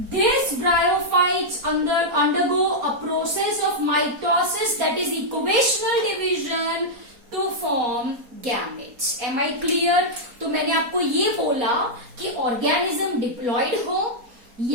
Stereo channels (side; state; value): left; late; 4.2 ms